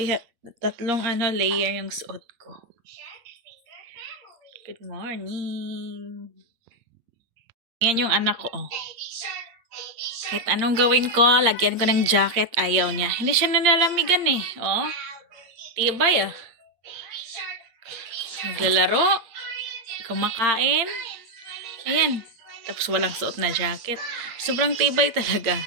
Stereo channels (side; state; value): left; late; 8.7 ms